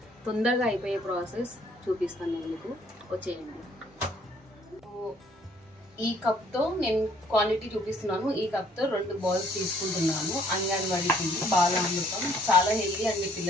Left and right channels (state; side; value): normal; both; correlation 0.62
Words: తొందరగా అయిపోయే ప్రాసెస్ చూపిస్తాను నేను మీకు. వచ్చేయండి. ఈ కప్తో నేను క్వాంటిటీ చూపిస్తున్నాను. ఈ కప్తో 2 బౌల్స్ తీసుకుంటున్నాను. అంగన్వాడీకి బాలామృతం చాలా హెల్దీ అండి,